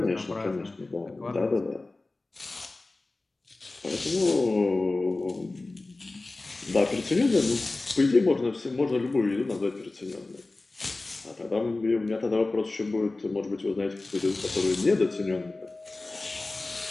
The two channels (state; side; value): quieter; right; 3.2 dB